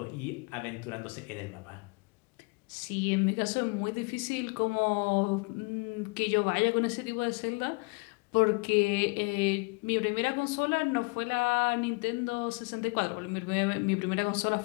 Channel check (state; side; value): quieter; right; 30.2 dB